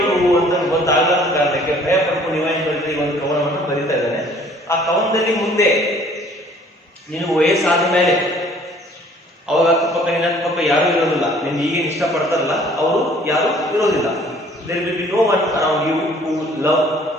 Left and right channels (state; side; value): normal; both; correlation 0.56